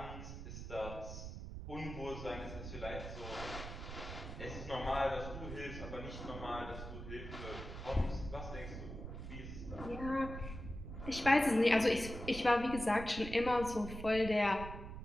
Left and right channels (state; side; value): noise; right; rumble, 9 dB below the sound